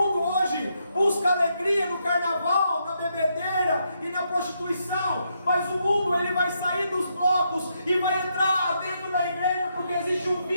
hoje busca alegria no carnaval, na bebedeira e na prostituição. Mas o mundo ele vai sair dos blocos e vai entrar dentro da igreja, porque existe um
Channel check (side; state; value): both; inverted; correlation -0.78